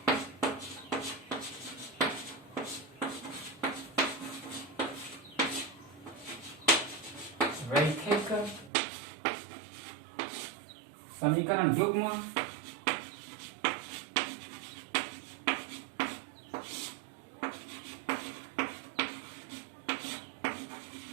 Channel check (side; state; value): left; drops out; at 8.7 s